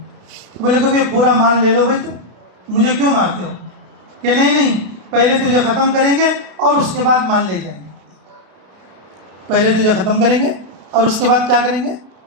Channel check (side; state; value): left; late; 32 ms